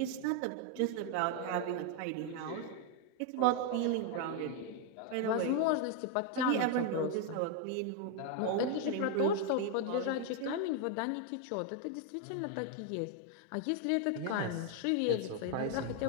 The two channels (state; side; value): different; both; correlation 0.01